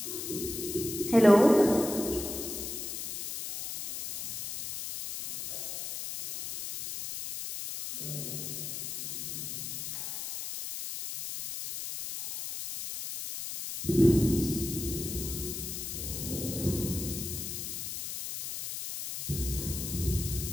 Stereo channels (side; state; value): left; noise; hiss, 6 dB below the sound